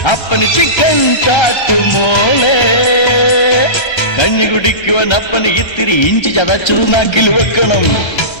അപ്പന് ചിക്കൻ കാട്ടുമോളെ കഞ്ഞി കുടിക്കുവാൻ അപ്പന് ഇത്തിരി ഇഞ്ചി ചതച്ചു നാക്കിൽ വെക്കണം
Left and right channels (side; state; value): right; late; 1.3 ms